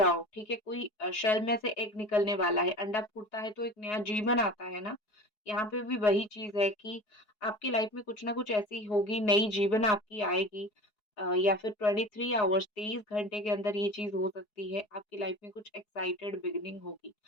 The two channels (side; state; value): right; late; 4.7 ms